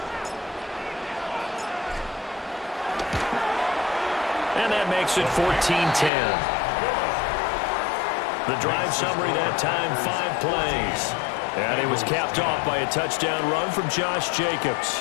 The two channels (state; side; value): drops out; right; at 6.1 s